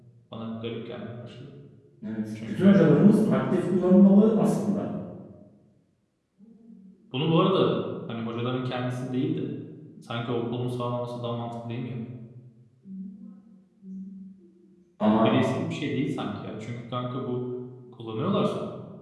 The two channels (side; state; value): both; identical; correlation 1.00